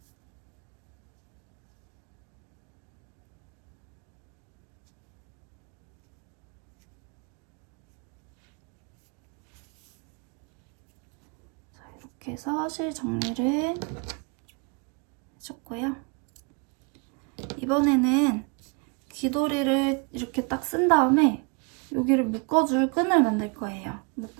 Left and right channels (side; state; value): left; quieter; 33.0 dB